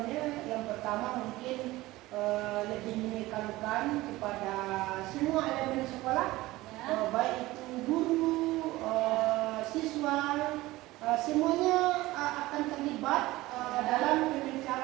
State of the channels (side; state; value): left; quieter; 18.6 dB